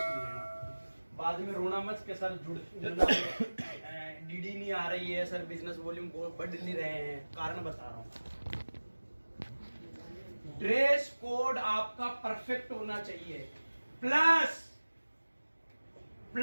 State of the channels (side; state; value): both; inverted; correlation -1.00